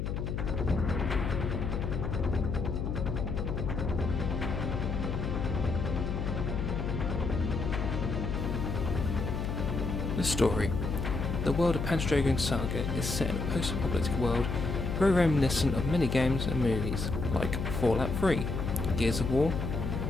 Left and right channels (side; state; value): left; noise; hum, 2 dB below the sound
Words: The story. The world of Panzer Dragoon Saga is set in a post-apocalyptic world very reminiscent of many games and movies like Fallout 3, Gears of War,